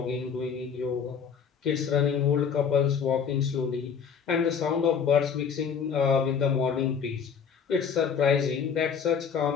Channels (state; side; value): quieter; right; 6.8 dB